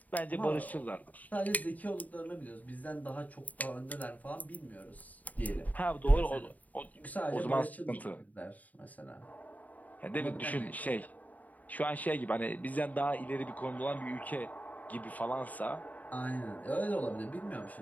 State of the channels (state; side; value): late; right; 0.075 ms